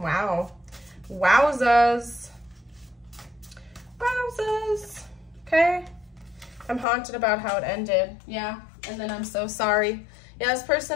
Wowzas. Wowzas. Okay. I'm haunted about how it ended. Yeah. And then I'm so sorry. Yeah, this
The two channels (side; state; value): right; drops out; at 6.9 s